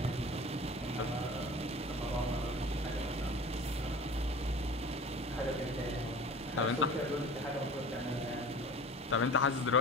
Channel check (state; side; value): normal; both; correlation 0.39